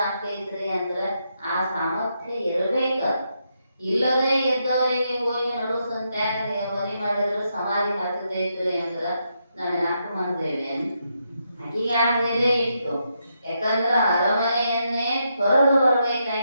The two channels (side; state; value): both; inverted; correlation -0.81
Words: ಆಗ್ತೈತ್ರಿ ಅಂದ್ರೆ ಆ ಸಾಮರ್ಥ್ಯ ಇರಬೇಕ. ಇಲ್ಲದೆ ಇದ್ದವರಿಗೆ ಹೋಗಿ ನಡು ಸಂತ್ಯಾಗ ಮನೆ ಮಾಡಿದ್ರು ಸಮಾಧಿ ಹಾಕತೈತ್ರಿ ಅಂದ್ರ ನಾವು ಯಾಕೆ ಮಾಡ್ತೇವೆ? ಅಕ್ಕಿಗಾದ್ಮೇಲೆ ಇತ್ತು. ಯಾಕಂದ್ರ ಅರಮನೆಯನ್ನೇ ತೊರೆದು